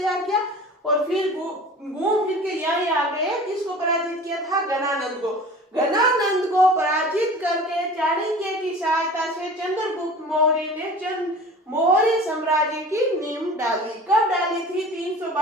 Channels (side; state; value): both; normal; correlation 0.40